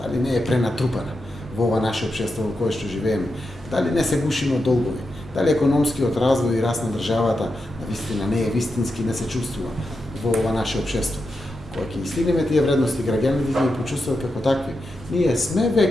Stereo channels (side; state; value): both; normal; correlation 0.87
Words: дали не е пренатрупана во ова наше општество во кое што живееме, дали не се гушиме од долгови, дали економскиот развој и раст на државата навистина не е вистински, не се чувствува во ова наше општество. Кога ќе стигнеме тие вредности, граѓаните ќе ги почувствуваат како такви. Ние сме